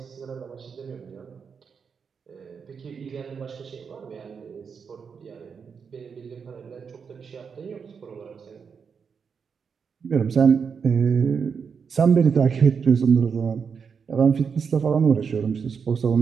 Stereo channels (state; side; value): quieter; left; 6.2 dB